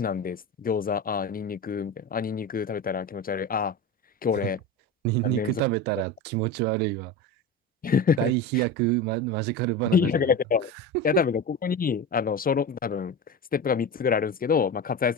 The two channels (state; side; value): normal; both; correlation 0.25